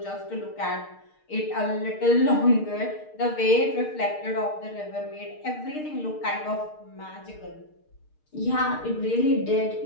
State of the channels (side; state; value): right; late; 6.5 ms